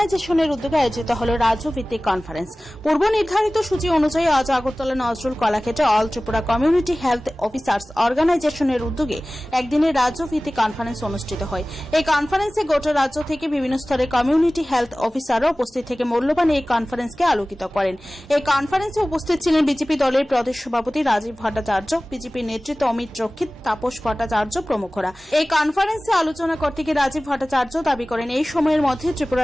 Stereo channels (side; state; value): both; normal; correlation 0.98